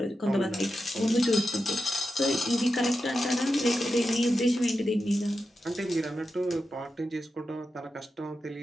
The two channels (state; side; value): normal; both; correlation 0.90